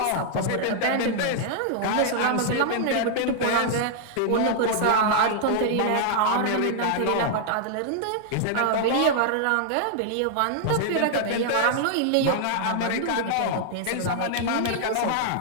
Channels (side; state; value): both; different; correlation -0.01